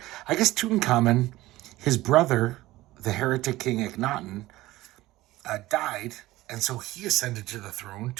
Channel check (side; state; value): left; quieter; 17.5 dB